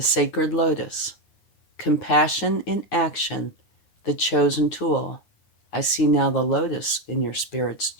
Sacred Lotus. Compassion in action, the chosen tool. I see now the lotus in your spirit's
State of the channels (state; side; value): late; right; 9.8 ms